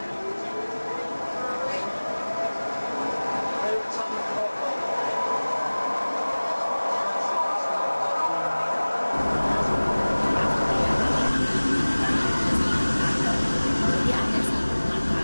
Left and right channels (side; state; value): both; inverted; correlation -1.00